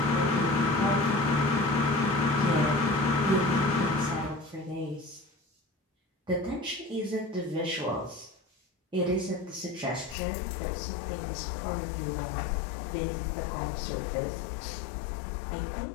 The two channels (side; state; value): right; drops out; at 10.2 s